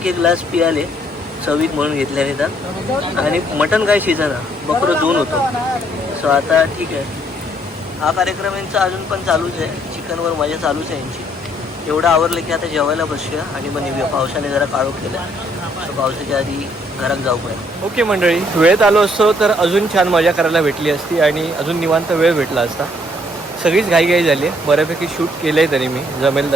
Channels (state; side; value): normal; both; correlation 0.67